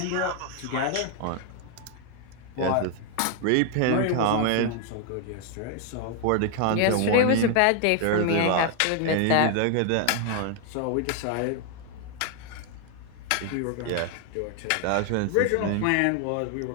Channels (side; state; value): both; different; correlation 0.00